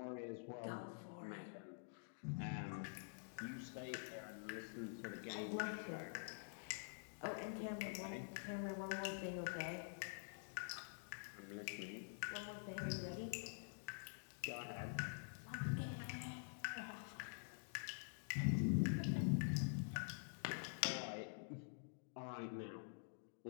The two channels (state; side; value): silent; right; digital silence